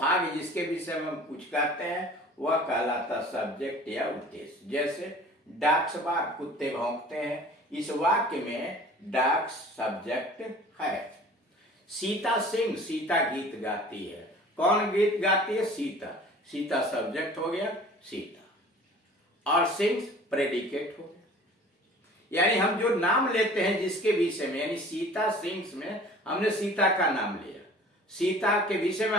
जिसके विषय में हम कुछ कहते हैं, वह कहलाता सब्जेक्ट या उद्देश्य। जैसे डॉग्स बार्क, कुत्ते भौंकते हैं, इस वाक्य में डॉग्स सब्जेक्ट है। सीता सिंग, सीता गीत गाती है। कौन गीत गाती है? सीता। सीता सब्जेक्ट हो गया, सीता, और सिंग्स प्रेडिकेट हो गया। यानी हम जो नाम लेते हैं जिसके विषय में, यानी सीता सिंग्स में हमने सीता का नाम लिया, सीता के विषय में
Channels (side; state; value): both; normal; correlation 0.46